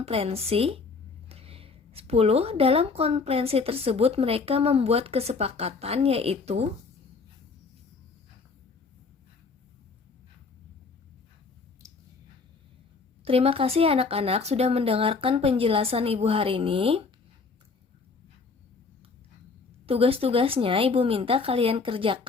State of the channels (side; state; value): right; quieter; 4.6 dB